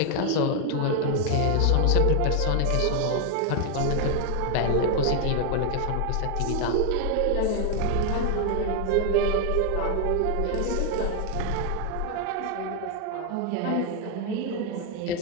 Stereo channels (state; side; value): different; both; correlation 0.01